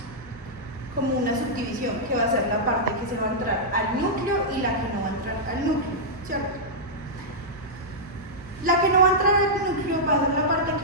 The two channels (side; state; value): both; normal; correlation -0.09